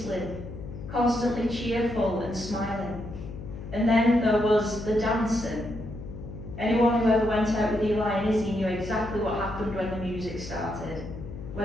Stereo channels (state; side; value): noise; left; hum, 11 dB below the sound